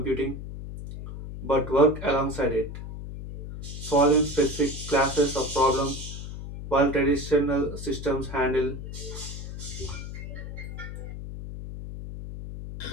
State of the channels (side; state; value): left; noise; hum, 9 dB below the sound